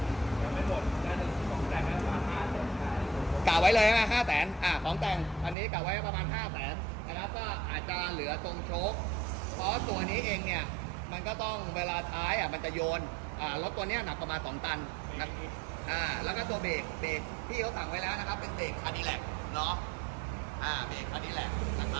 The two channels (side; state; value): left; drops out; at 5.6 s